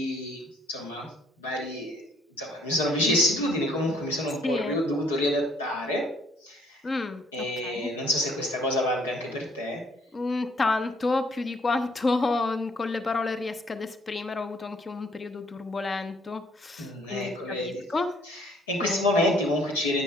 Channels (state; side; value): normal; both; correlation 0.63